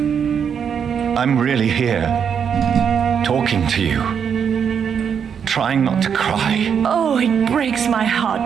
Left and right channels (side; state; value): left; quieter; 7.4 dB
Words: I'm really here, talking to you, trying not to cry. Oh, it breaks my